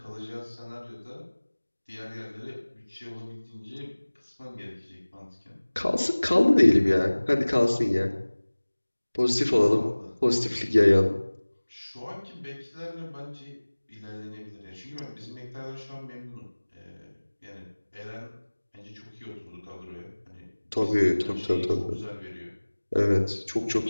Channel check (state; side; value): inverted; both; correlation -1.00